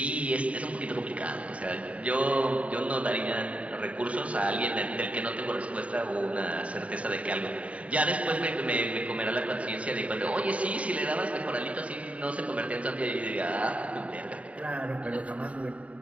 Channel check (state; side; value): late; left; 0.066 ms